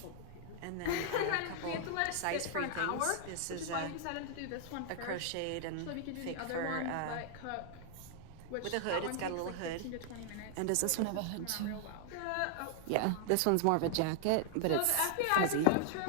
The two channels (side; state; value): both; different; correlation -0.01